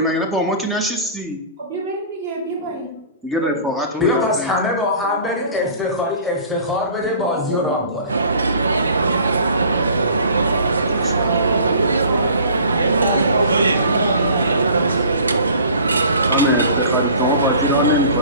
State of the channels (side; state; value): both; inverted; correlation -0.46